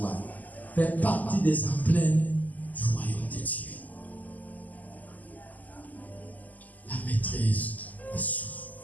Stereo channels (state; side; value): late; right; 0.080 ms